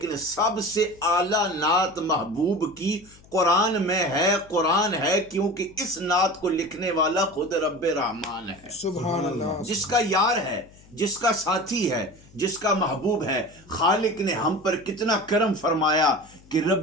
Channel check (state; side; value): noise; left; hum, 25 dB below the sound